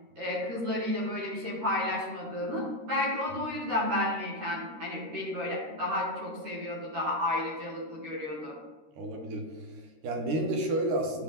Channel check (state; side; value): late; left; 13 ms